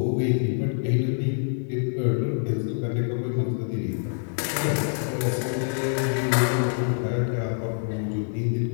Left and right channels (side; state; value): right; silent; 61 dB below the other